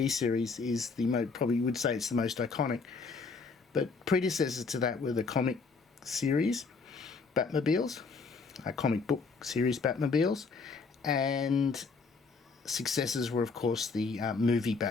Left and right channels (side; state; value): right; quieter; 4.5 dB